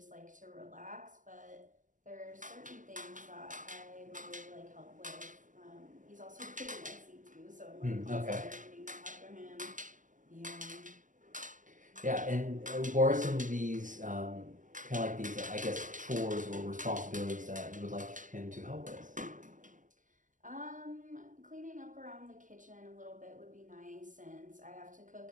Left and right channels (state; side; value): late; left; 0.37 ms